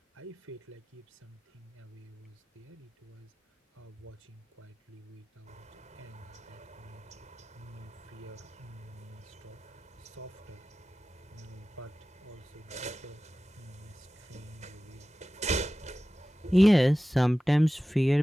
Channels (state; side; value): normal; both; correlation 0.96